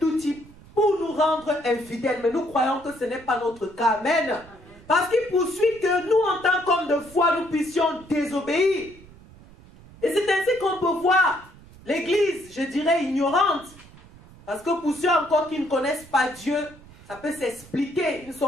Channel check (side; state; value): right; noise; rumble, 22 dB below the sound